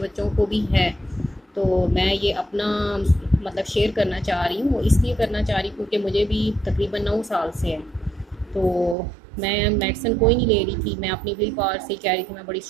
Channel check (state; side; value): drops out; left; at 9.0 s